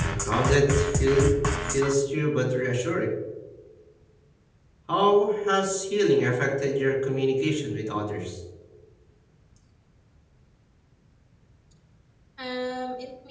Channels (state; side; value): identical; both; correlation 1.00